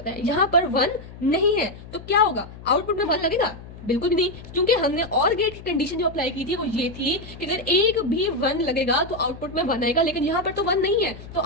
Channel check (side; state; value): left; noise; hum, 16 dB below the sound